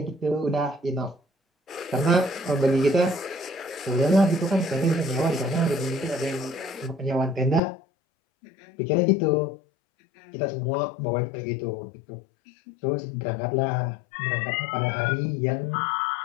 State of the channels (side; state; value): right; drops out; at 7.6 s